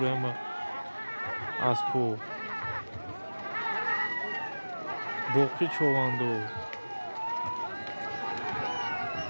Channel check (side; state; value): both; inverted; correlation -1.00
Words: ama aspo. Boqi chovandoz.